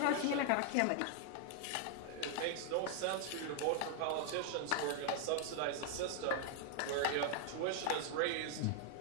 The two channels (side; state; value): both; different; correlation 0.00